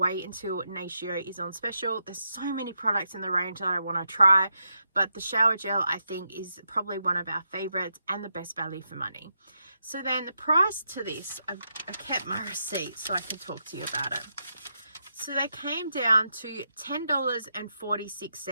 until Natio is on special. There's so many products in the range that I want to try, but the shower gel I think is probably one of our favorites and the best value for money. So then the price to this, I kept my receipt so I can talk to you about it. So they came down to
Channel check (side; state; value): both; inverted; correlation -0.83